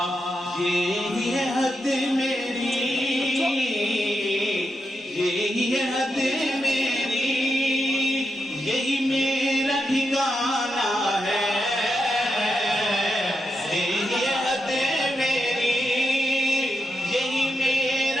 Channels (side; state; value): both; normal; correlation 0.85